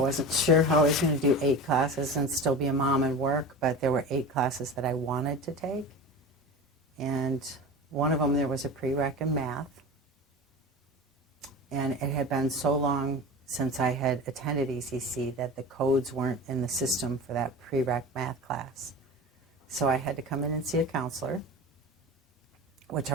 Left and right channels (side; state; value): both; normal; correlation 0.31